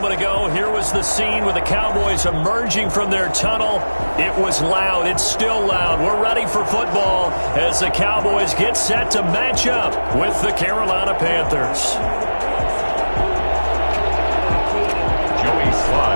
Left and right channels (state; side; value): inverted; both; correlation -1.00